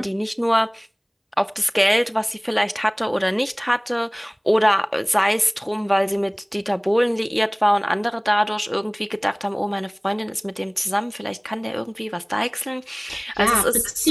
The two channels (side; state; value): both; identical; correlation 1.00